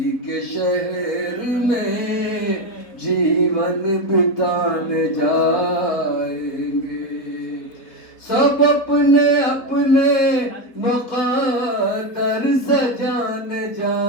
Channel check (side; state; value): right; late; 4.1 ms